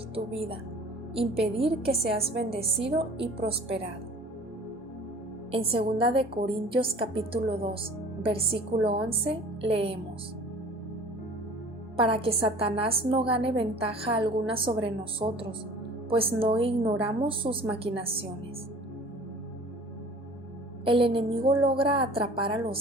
tu vida, impedir que seas bendecido y prosperado. En 2 de Corintios capítulo 2, versículo 11, leemos: para que Satanás no gane ventaja alguna sobre nosotros, pues no ignoramos sus maquinaciones. El enemigo logra atrapar a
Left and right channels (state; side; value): normal; both; correlation 0.45